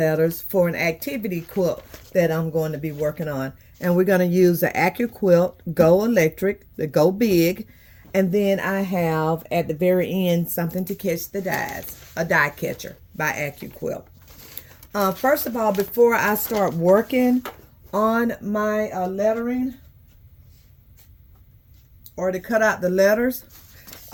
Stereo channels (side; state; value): both; identical; correlation 1.00